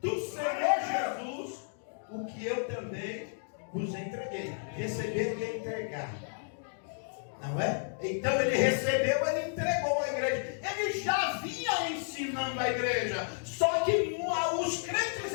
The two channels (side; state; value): right; silent; digital silence